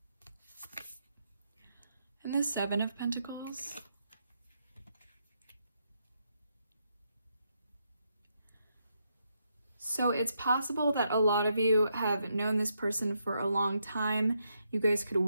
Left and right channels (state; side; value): inverted; both; correlation -0.79